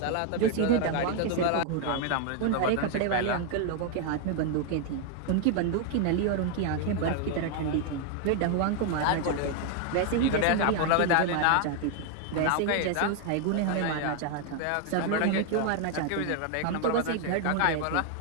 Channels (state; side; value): different; both; correlation 0.00